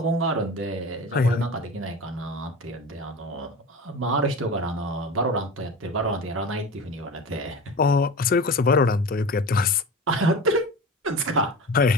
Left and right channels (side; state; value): both; normal; correlation 0.32